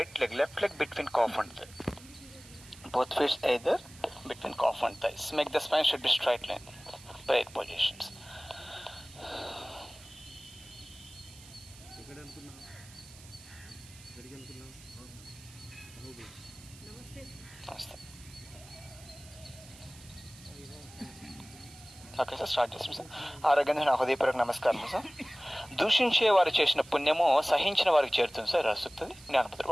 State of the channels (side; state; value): right; noise; hiss, 20 dB below the sound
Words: leg, left leg between calf and thigh. Both feet either between calf and thighs. Make the spine should be straight line. Prayer positions. Namaste. Okay sir, start చేస్తాం sir. ఆరోగ్యంగా నా హృదయపూర్వక నమస్కారం sir. దూషించే వారు చేసిన పుణ్యము సహించిన వారికి చేరుతుంది సార్, రాస్తుంది జ్ఞానపత్రం.